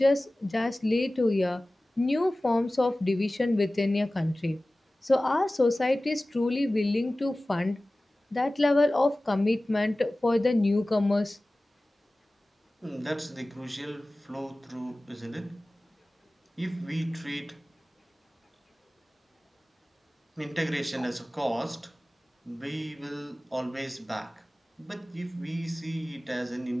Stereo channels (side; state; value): both; normal; correlation 0.97